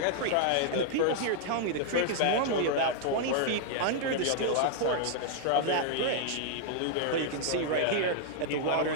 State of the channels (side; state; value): both; different; correlation 0.00